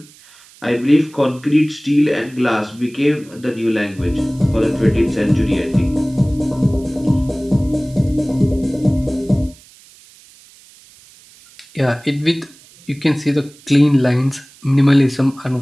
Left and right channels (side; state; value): right; noise; hiss, 25 dB below the sound